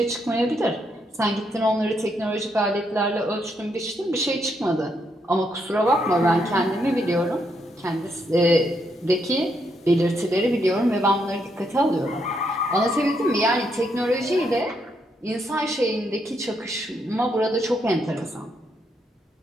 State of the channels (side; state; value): both; normal; correlation 0.77